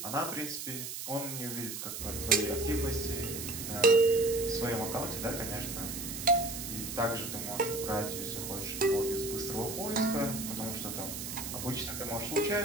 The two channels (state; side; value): noise; right; hiss, 6 dB below the sound